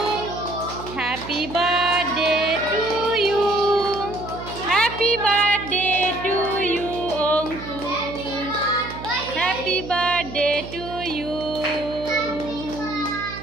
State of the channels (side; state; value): right; noise; hum, 12 dB below the sound